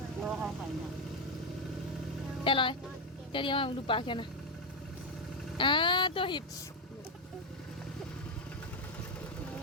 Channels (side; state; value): both; normal; correlation 0.06